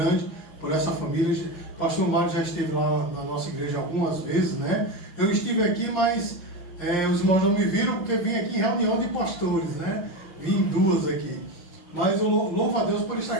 por essa família. O pastor Mário já esteve lá na nossa igreja algumas vezes, né? Eu estive aqui, mas os irmãos não me viram porque vim aqui em reunião de pastores, né? Vim em duas aqui. Mas eu louvo a Deus por estar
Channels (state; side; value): late; right; 5.7 ms